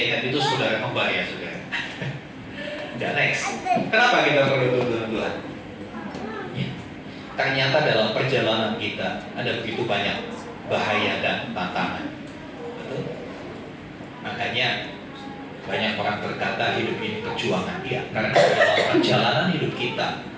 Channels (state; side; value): identical; both; correlation 1.00